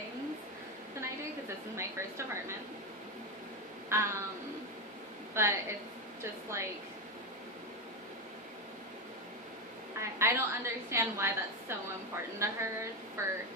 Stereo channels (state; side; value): normal; both; correlation 0.12